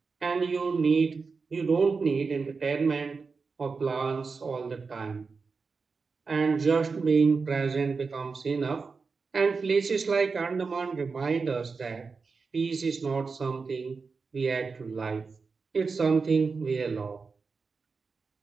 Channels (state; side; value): quieter; left; 4.7 dB